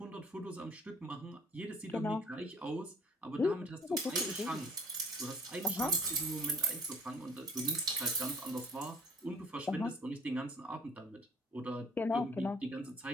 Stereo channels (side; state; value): both; normal; correlation 0.53